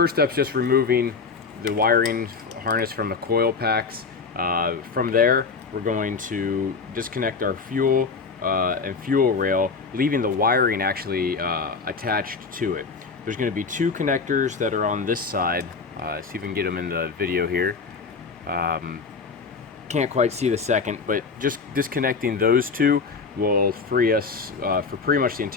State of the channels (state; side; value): quieter; right; 4.8 dB